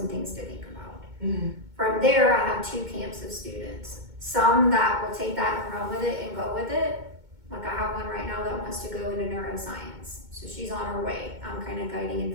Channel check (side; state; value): left; late; 2.2 ms